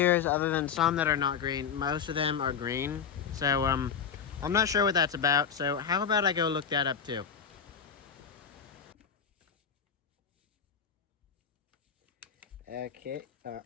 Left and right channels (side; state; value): right; quieter; 7.2 dB